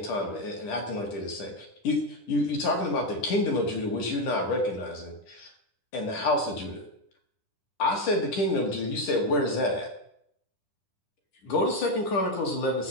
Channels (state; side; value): late; right; 10 ms